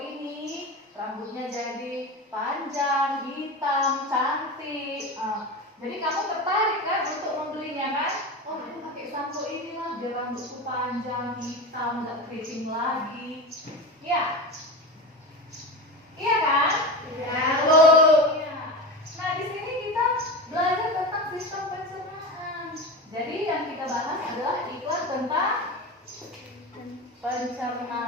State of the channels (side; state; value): both; normal; correlation 0.25